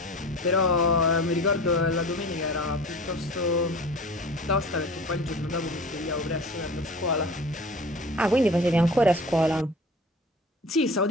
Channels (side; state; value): both; normal; correlation 0.39